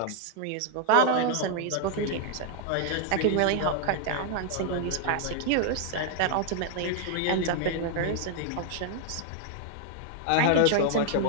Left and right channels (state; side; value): different; both; correlation 0.00